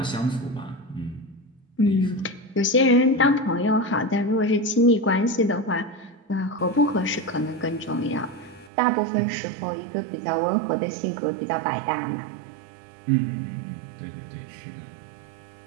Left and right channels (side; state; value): left; drops out; at 8.7 s